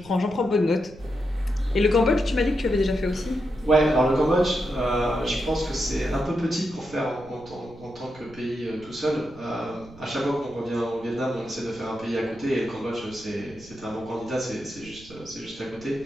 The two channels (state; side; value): noise; right; rumble, 20 dB below the sound